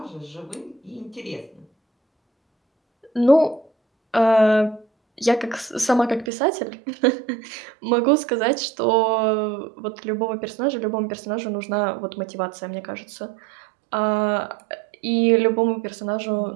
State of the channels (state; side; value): drops out; left; at 6.3 s